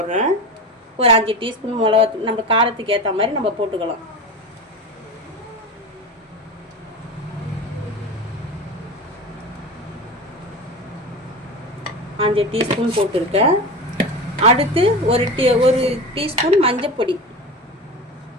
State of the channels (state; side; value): normal; both; correlation 0.27